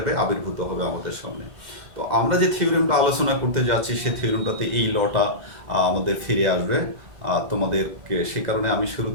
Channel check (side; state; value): left; late; 2.1 ms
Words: আবির্ভূত হবে আমাদের সামনে। তো আমরা যে থিওরেমটা আলোচনা করতে যাচ্ছি সে থিওরেমটাতে এই লটা আমাদের ফিরে আসবে। তোমাদেরকে সে কারণে আমি